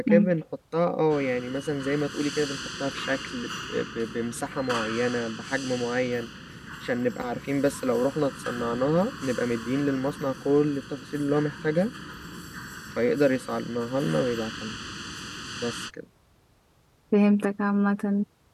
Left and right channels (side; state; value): both; identical; correlation 1.00